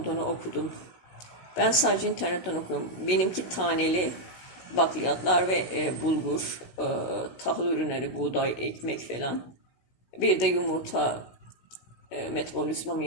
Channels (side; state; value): right; late; 16 ms